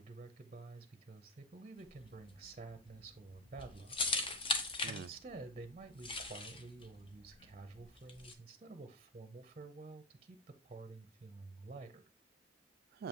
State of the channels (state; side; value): normal; both; correlation 0.15